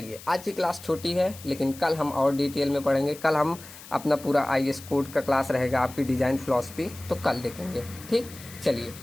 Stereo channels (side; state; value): left; noise; hiss, 17 dB below the sound